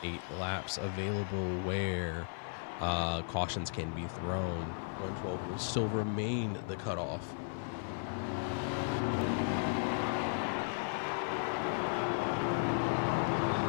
8 laps available where cautions can be thrown. 112 will still remain the cutoff.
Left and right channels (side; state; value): right; silent; 54 dB below the other